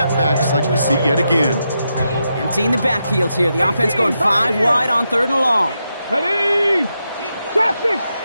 like we see yet again. Emptying the backfield here. The offense going 5 wide on third and long. Ready? Top 6.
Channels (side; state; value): both; inverted; correlation -0.85